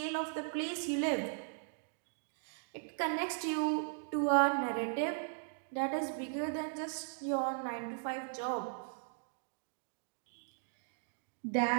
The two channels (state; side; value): silent; left; digital silence